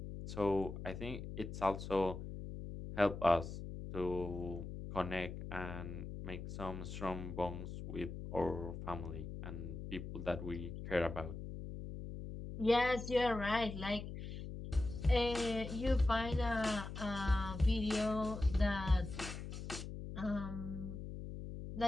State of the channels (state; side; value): noise; left; hum, 8 dB below the sound